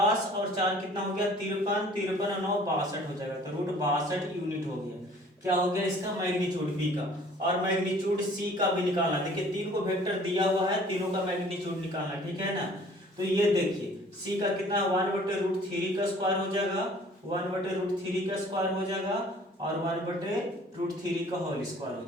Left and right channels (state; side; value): normal; both; correlation 0.52